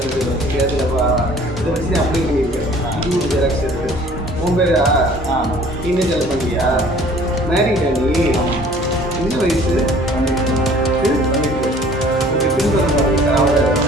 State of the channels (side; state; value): both; normal; correlation 0.52